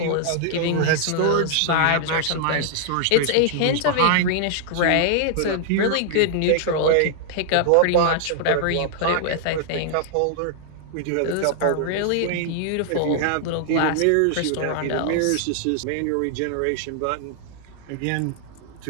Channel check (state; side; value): different; both; correlation -0.01